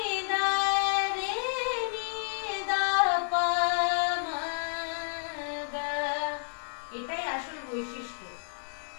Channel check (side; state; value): right; silent; digital silence